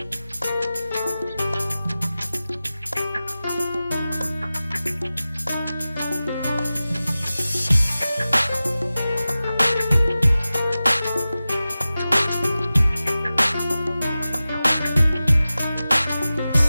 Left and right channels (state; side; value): inverted; both; correlation -0.95